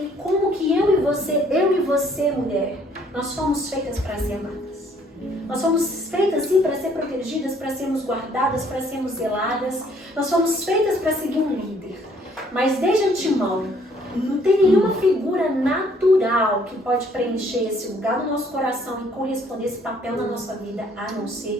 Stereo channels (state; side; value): normal; both; correlation 0.62